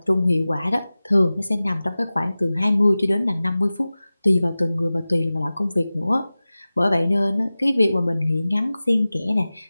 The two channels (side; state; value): both; inverted; correlation -0.97